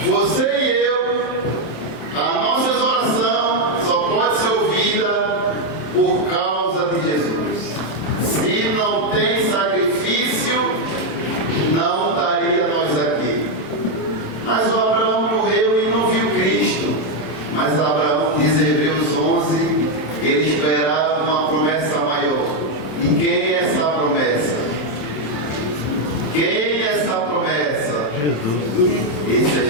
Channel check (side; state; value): right; late; 28 ms